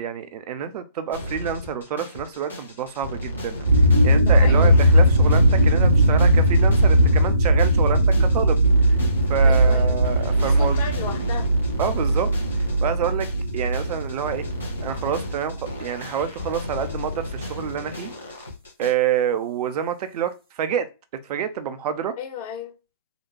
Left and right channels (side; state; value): both; inverted; correlation -0.64